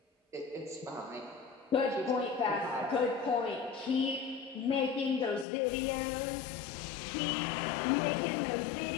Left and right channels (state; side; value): drops out; right; at 5.5 s